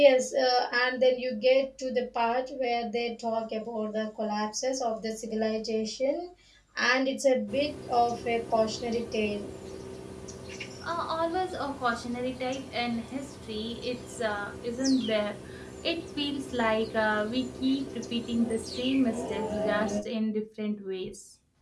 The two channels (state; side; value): identical; both; correlation 1.00